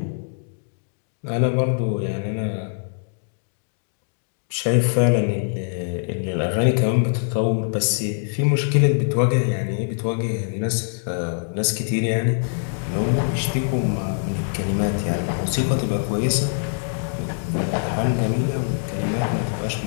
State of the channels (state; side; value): silent; right; digital silence